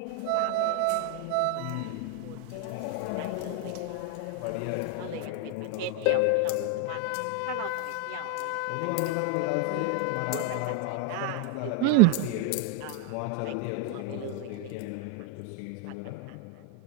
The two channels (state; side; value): different; both; correlation 0.01